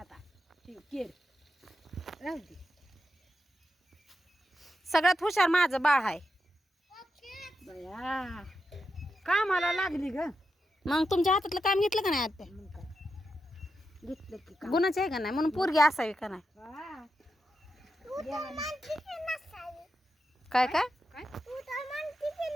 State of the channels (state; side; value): normal; both; correlation 0.87